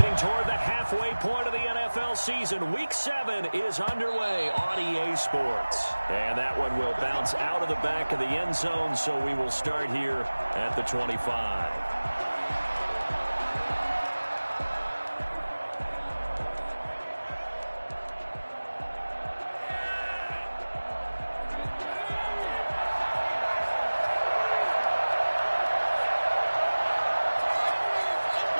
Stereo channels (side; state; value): both; inverted; correlation -1.00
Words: toward the halfway point of the NFL season, Week 7 is underway on EA Sports. And that one will bounce out of the back of the end zone, so we will start here at the 25.